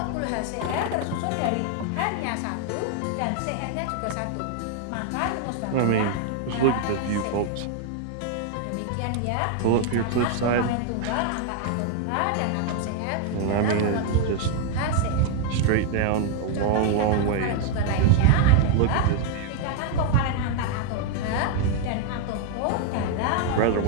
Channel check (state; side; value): different; both; correlation 0.00